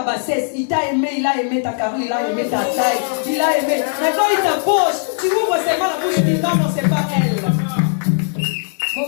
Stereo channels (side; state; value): right; silent; digital silence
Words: bassesse. Il t'a aimé, il a aimé ta carrure, il a aimé ta taille, il a aimé. Maintenant il t'approche, tu ouvres seulement la bouche et tu dis non, c'est pas elle.